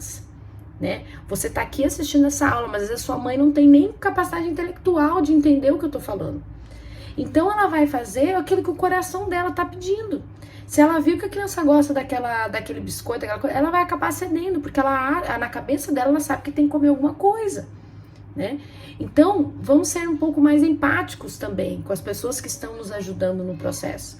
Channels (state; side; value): identical; both; correlation 1.00